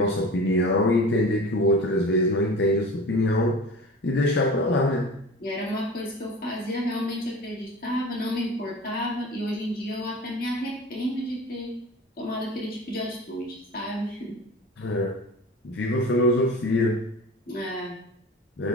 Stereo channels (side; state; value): both; normal; correlation 0.37